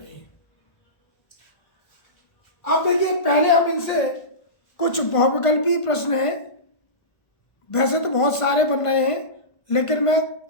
हैं। अब देखिए, पहले हम इनसे कुछ बहुविकल्पी प्रश्न हैं, वैसे तो बहुत सारे बन रहे हैं, लेकिन मैं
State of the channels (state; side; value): late; right; 1.5 ms